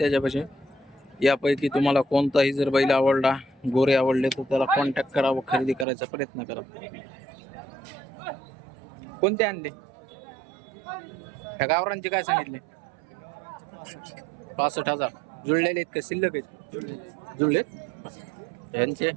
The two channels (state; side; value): drops out; left; at 5.9 s